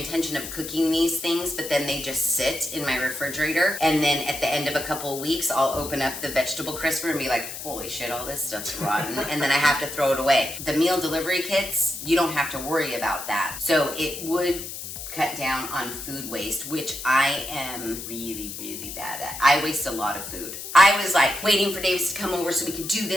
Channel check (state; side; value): noise; left; hiss, 9 dB below the sound